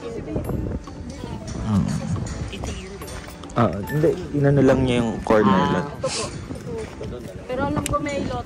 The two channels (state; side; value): identical; both; correlation 1.00